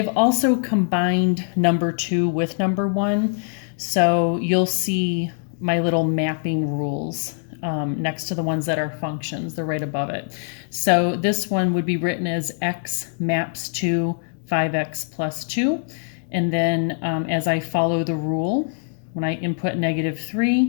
also combined number 2 with number 1. So you'll see my little mapping rules next to the ones that are functions. They're right above it. So this one would be written as x maps to 5x plus 2. And then as I follow the rule, when I input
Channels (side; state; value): right; silent; digital silence